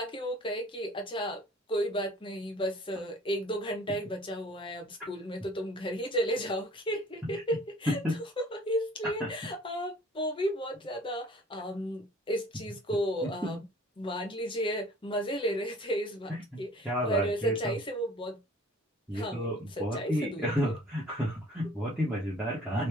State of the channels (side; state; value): both; normal; correlation 0.51